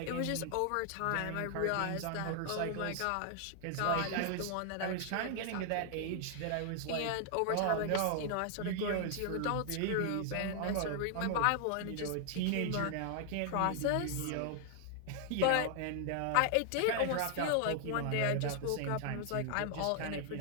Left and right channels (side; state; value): both; different; correlation 0.00